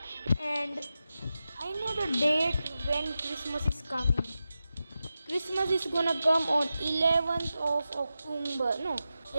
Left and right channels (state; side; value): inverted; both; correlation -0.92